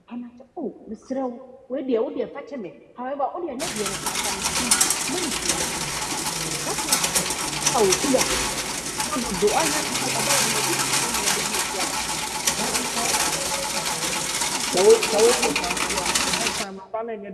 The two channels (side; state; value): both; identical; correlation 1.00